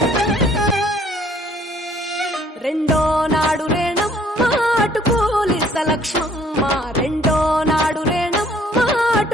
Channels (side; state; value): both; normal; correlation 0.61